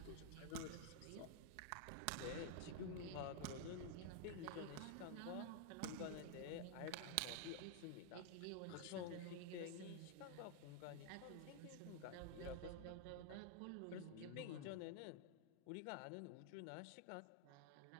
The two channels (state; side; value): different; both; correlation -0.01